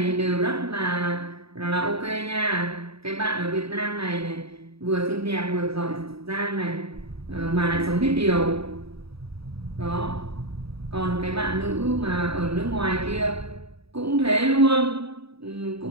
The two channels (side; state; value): left; late; 0.77 ms